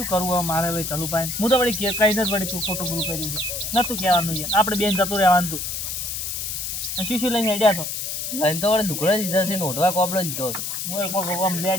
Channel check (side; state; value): left; noise; hiss, 4 dB below the sound